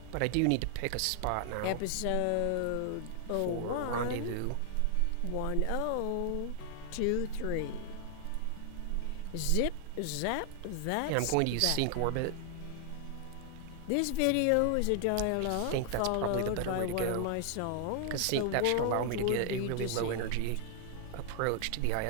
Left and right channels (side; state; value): both; different; correlation 0.00